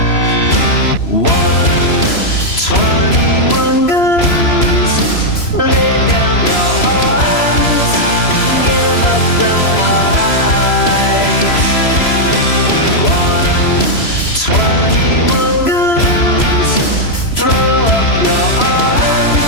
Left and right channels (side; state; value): right; late; 3.0 ms